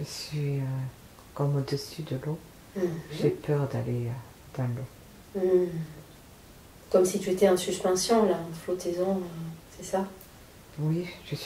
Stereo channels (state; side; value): identical; both; correlation 1.00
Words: suis comme au-dessus de l'eau. J'ai peur d'aller dans l'eau. Comme si tu étais en suspension, là, en flottaison, c'est ça? Oui, je